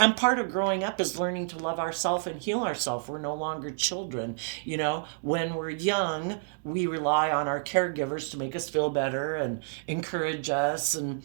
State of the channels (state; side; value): silent; left; digital silence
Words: part of growing up is learning to love ourselves and heal ourselves. We're no longer children. You know, when we're young, we rely on our caregivers to make us feel better and encourage us and